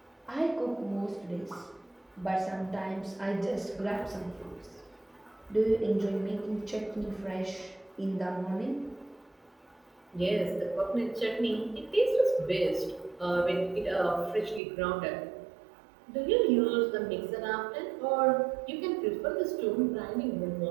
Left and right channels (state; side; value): drops out; left; at 14.6 s